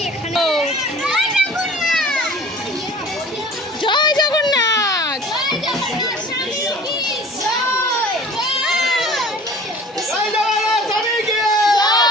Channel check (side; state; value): both; normal; correlation 0.45